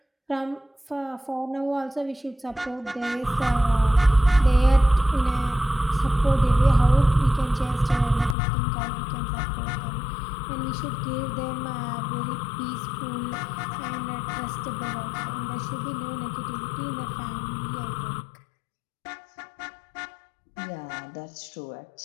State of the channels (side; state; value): right; drops out; at 8.3 s